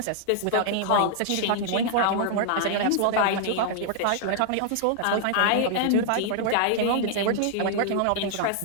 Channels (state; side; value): different; both; correlation -0.01